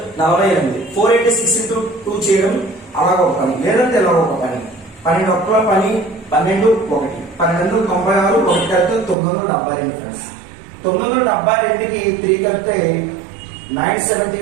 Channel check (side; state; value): left; drops out; at 9.2 s